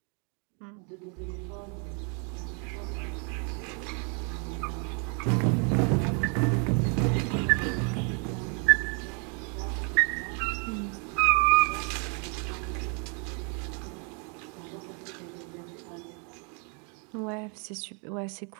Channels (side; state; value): left; quieter; 37.9 dB